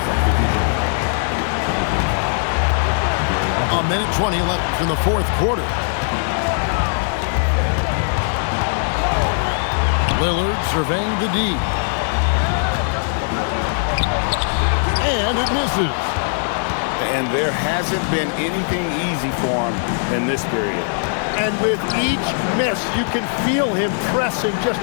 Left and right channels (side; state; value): right; silent; digital silence